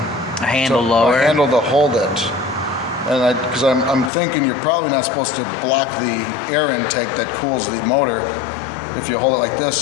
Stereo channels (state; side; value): drops out; right; at 4.1 s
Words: A handle lower? A handle to hold it. And because I'm thinking you're probably not supposed to block the air intake that cools the motor if you hold it like this,